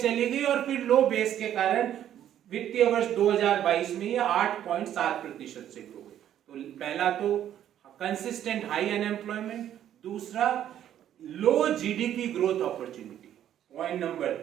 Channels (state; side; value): quieter; left; 10.9 dB